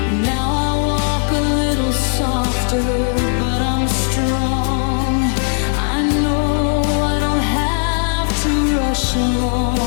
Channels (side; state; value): right; silent; 57 dB below the other